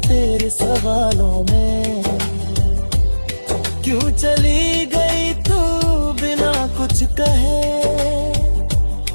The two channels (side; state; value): both; inverted; correlation -1.00